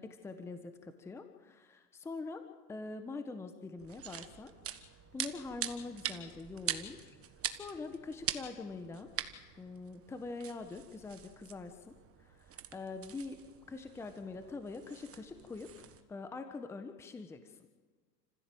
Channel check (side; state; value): both; normal; correlation 0.41